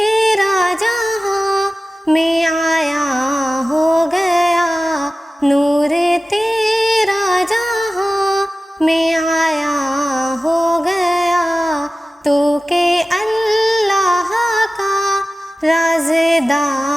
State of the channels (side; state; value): both; normal; correlation 0.95